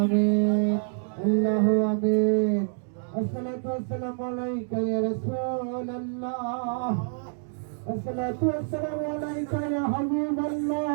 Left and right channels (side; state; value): left; silent; digital silence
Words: আমিন, আল্লাহু আমিন। আসসালাতু ওয়াসসালামু আলাইকা ইয়া রাসূলুল্লাহ, আসসালাতু ওয়াসসালামু আলাইকা ইয়া